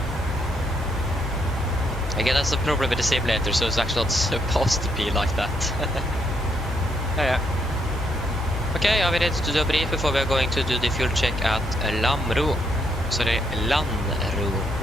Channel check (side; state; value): both; normal; correlation 0.75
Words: Again, that's the problem with the simulator, so it's actually not supposed to be like that. Yeah. Okay, are we ready to do a brief before we are going to do the fuel check at Lamro? Sorry, Landro.